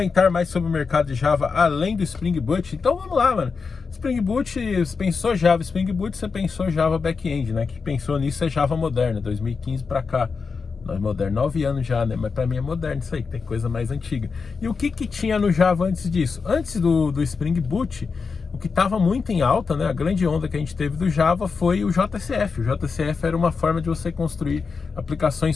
mais sobre o mercado de Java além do Spring Boot? Então vamos lá, mano. Spring Boot, você pensou Java Spring Boot, você pensou Java Backend, né? Que pensou nisso é Java moderna, 2015 pra cá. Não é moderno, 9 anos já, né? Mas pra mim é moderno isso aí, tem coisa mais antiga. E o que tinha no Java antes disso? Antes do Spring Boot, o que estava muito em alta, né? A grande onda que a gente teve do Java foi o JCF. O JCF era uma forma de você construir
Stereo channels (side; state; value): right; quieter; 5.0 dB